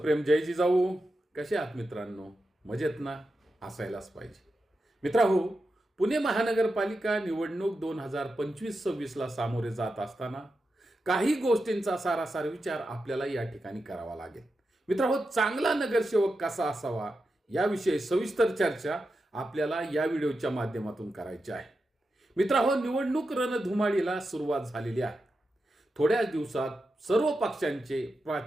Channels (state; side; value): normal; both; correlation 0.89